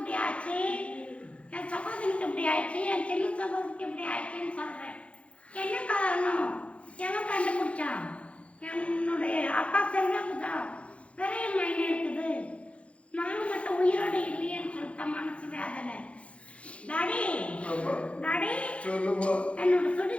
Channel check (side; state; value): right; late; 0.062 ms